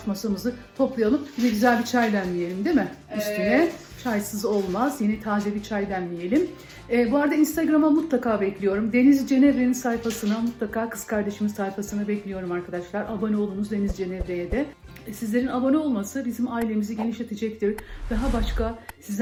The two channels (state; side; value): identical; both; correlation 1.00